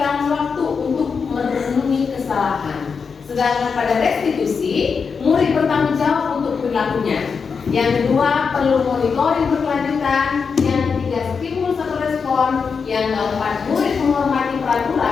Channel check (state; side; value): quieter; right; 5.6 dB